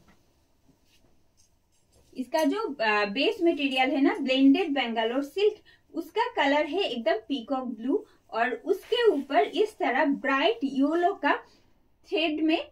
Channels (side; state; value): both; identical; correlation 1.00